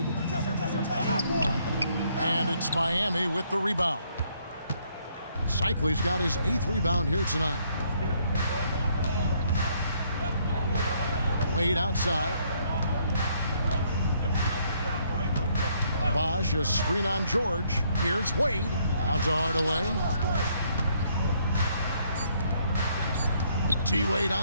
And it's Miami with the rebound. Cycley's got his 8th rebound here tonight. Wade outside. Bosch, a screen on George. Here's Wade. Out to Hardaway. T-Wade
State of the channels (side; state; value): both; inverted; correlation -0.69